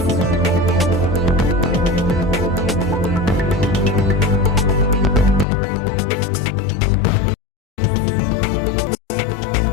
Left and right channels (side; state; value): right; drops out; at 5.5 s